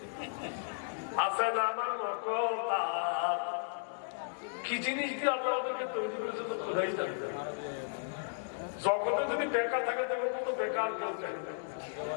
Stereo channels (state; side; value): silent; right; digital silence